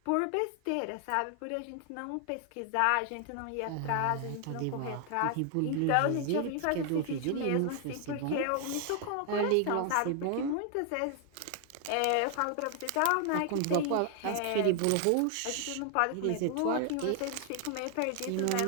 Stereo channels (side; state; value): both; different; correlation 0.00